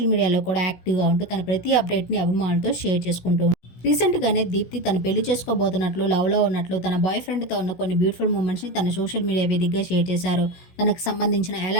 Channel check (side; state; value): right; late; 16 ms